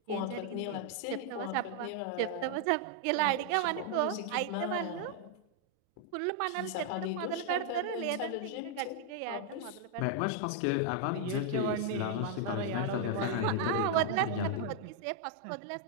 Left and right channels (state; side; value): different; both; correlation 0.00